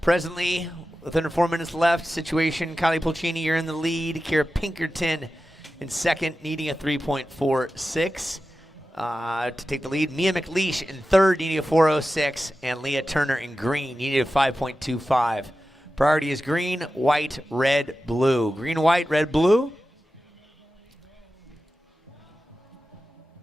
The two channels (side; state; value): both; normal; correlation 0.93